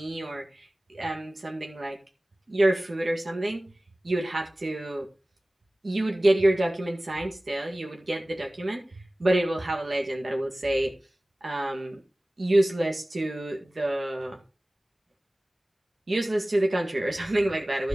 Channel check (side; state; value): both; normal; correlation 0.98